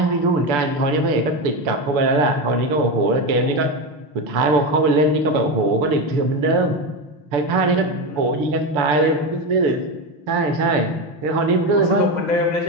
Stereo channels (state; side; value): late; left; 6.9 ms